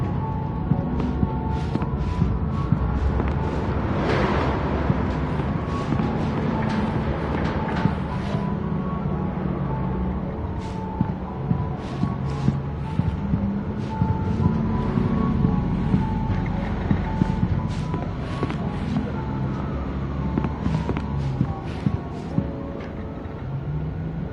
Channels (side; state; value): both; identical; correlation 1.00